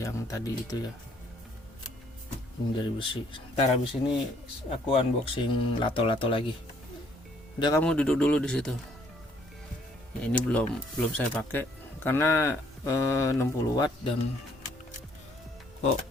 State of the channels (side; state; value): both; normal; correlation 0.64